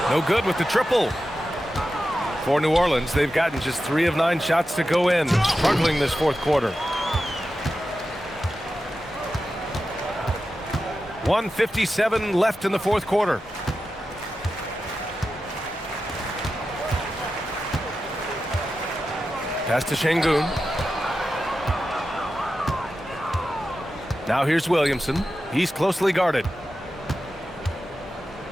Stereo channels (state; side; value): normal; both; correlation 0.91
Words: No good with the triple. For New Orleans, they've gotten just 3 of 9 shots to go in. Struggling this fourth quarter. 1:57 left in the fourth quarter. Pass to Şengün. Now here's Williamson. He's closely guarded.